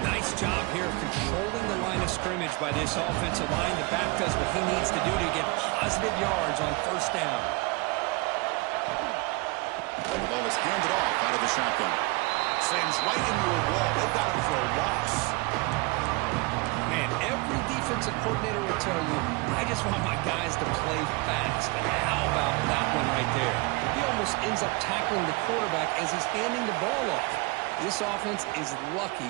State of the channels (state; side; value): quieter; left; 26.1 dB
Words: job here of controlling the line of scrimmage by this offensive line. The back does what he needs to do to get positive yards on first down. And the ball is handed off out of the shotgun. Slams right into a wall. They've got him for a loss. Man, every defensive coordinator will tell you, I just want my guys to play fast. And how about that one right there? He almost ends up tackling the quarterback as he's handing the ball off. This offense is lucky